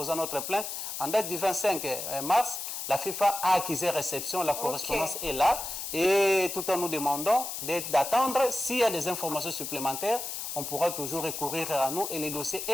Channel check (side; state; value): left; noise; hiss, 5 dB below the sound